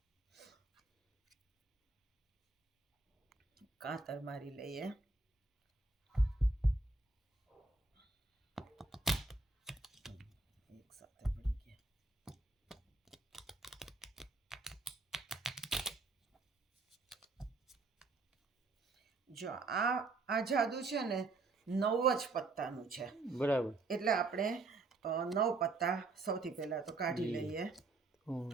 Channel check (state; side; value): quieter; left; 3.6 dB